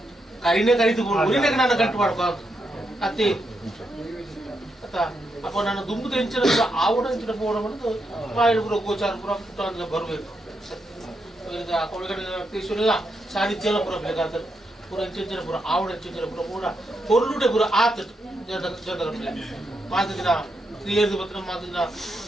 కరినే కరిదు ఊరినే నన్ను కంటు పడుకో అత్తే ಅಪ್ಪ ನಾನು ದುಂಬು ಹೆಂಚಿನ ಆವಡ ಹೆಂಚಿನ ಪೋಡ ಬಂದು ಮಾಯಿನ ಪುರ ಗೋಚಾರ ಪುರ ಪುಟ್ಟ ಅಂತ ಬರಬೇಕು ಕೊಳಗಡೆ ತೀಶ್ವರಿಲ್ಲ ಸಾನ್ನಿಧ್ಯೆಲ್ಲ ಪುರ ಬೇಕಾದ್ರೆ ಪುರ ಹೆಂಚಿನ ಪುರ ಆವಡ ಹೆಂಚಿನ ಪುರ ಪೂರ ಕೊಲ್ಲುಡೆ ಪುರ ಆತ ಜನರ ಮಾತು ದಿನ ಕ್ರಿಯೆದು ಬತ್ತ ಮಾತು ದಿನ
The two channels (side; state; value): both; normal; correlation 0.82